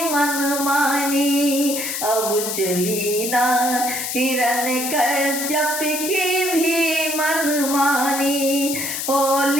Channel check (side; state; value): left; noise; hiss, 3 dB below the sound